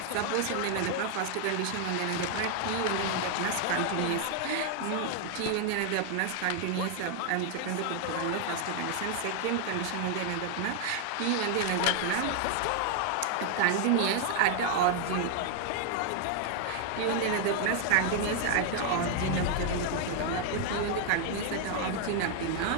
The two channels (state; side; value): different; both; correlation 0.00